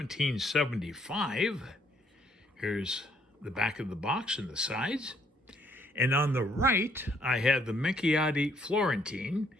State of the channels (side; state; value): both; normal; correlation 0.67